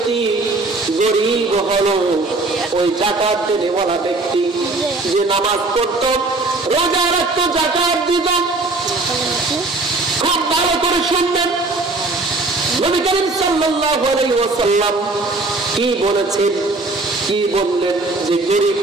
গরিব হলো ওই যাকাত দেনেওয়ালা ব্যক্তি যে নামাজ পড়ত, রোজা রাখত, যাকাত দিত। খুব ভালো করে শুনবেন নবী করিম সাল্লাল্লাহু আলাইহি ওয়াসাল্লাম কি বলেছেন, কি বললেন যে গরিব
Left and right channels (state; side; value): quieter; left; 3.3 dB